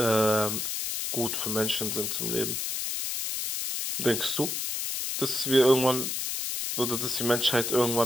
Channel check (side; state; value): left; noise; hiss, 2 dB below the sound